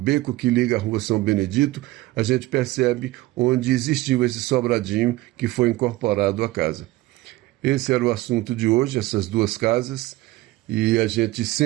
que liga a rua São Benedito, a gente percebe onde existiu esse sobradinho que foi incorporado à casa. Esse era o assunto de hoje, essas duas casas, e a gente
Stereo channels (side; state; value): left; quieter; 18.1 dB